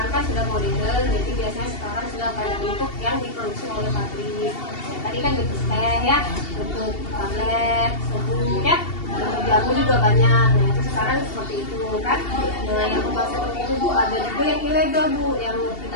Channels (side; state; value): right; late; 2.7 ms